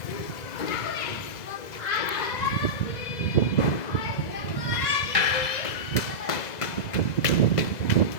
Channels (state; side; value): late; right; 2.0 ms